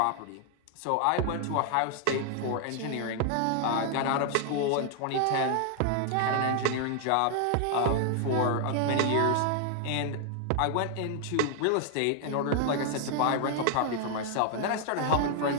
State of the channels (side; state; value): both; different; correlation 0.00